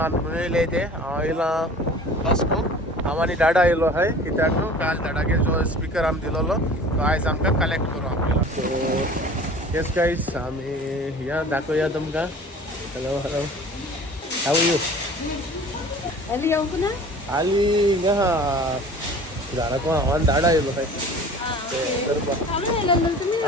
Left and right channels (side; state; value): both; normal; correlation 0.44